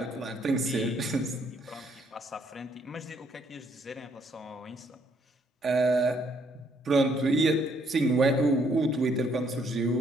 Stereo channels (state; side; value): normal; both; correlation 0.69